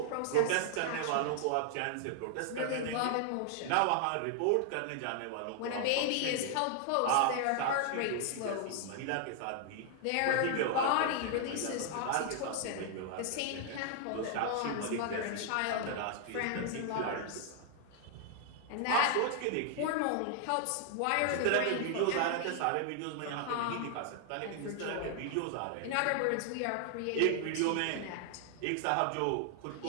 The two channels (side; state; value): both; different; correlation 0.00